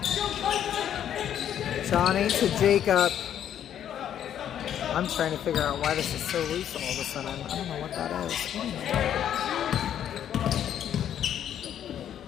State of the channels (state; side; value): quieter; right; 10.0 dB